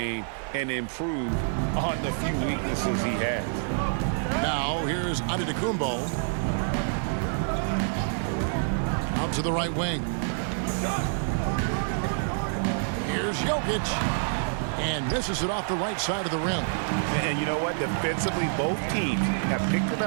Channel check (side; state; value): left; silent; 60 dB below the other